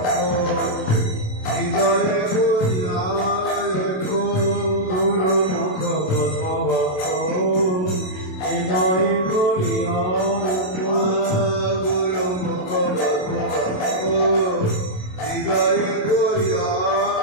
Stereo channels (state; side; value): late; right; 27 ms